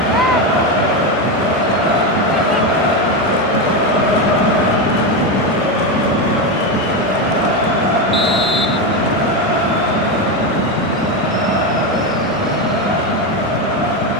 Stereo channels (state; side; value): normal; both; correlation 0.12